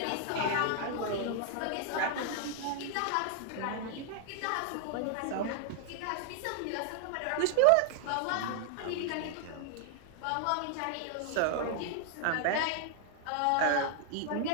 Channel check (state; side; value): different; both; correlation 0.00